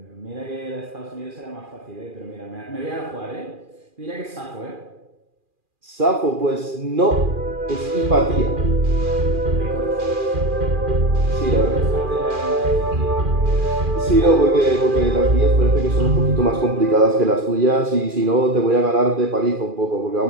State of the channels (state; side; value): late; left; 2.4 ms